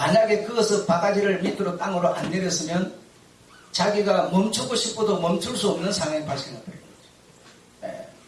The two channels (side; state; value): both; identical; correlation 1.00